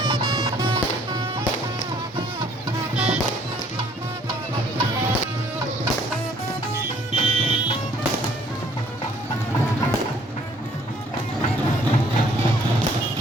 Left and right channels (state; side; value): normal; both; correlation 0.60